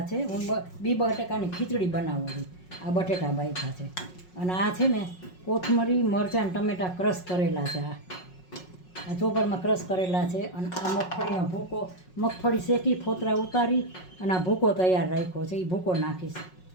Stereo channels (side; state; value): right; late; 5.5 ms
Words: છે. હું બટેકાની ખીચડી બનાવું છું. આ બટેટા બાફા છે અને આ છે ને કોથમરી, મરચાં અને ટમેટાં ક્રશ કરેલા છે. આ ચોપરમાં ક્રશ કરેલા છે અને આ મગફળીનો ભૂકો, મગફળી શેકી ફોતરા ઉતારી અને આ ભૂકો તૈયાર રાખ્યો છે. એ ભૂકો નાખીશ.